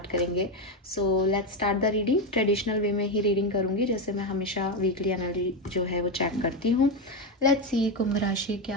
करेंगे। So let's start the reading. Traditional way में ही रीडिंग करूँगी, जैसे मैं हमेशा वीकली एनर्जी जो है वो चेक करती हूँ। लेट्स सी कुंभ राशि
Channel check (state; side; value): normal; both; correlation 0.10